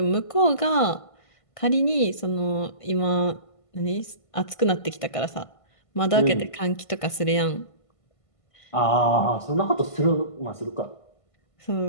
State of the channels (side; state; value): right; late; 1.5 ms